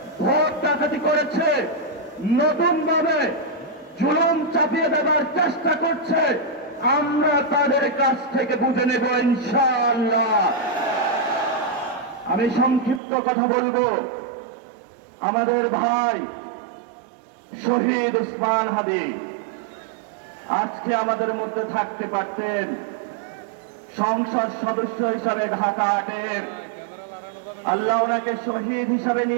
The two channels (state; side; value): drops out; left; at 13.0 s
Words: ভোট ডাকাতি করেছে, নতুন ভাবে জুলুম চাপিয়ে দেওয়ার চেষ্টা করছে, আমরা তাদের কাছ থেকে বুঝে নেব ইনশাআল্লাহ। আমি সংক্ষিপ্ত কথা বলবো। আমাদের ভাই শহীদ উসমান হাদি আজকে আমাদের মধ্যে থাকতে পারতেন, সংসদ সদস্য হিসাবে ঢাকা 8-এর আল্লাহ ওনাকে শহীদ হিসাবে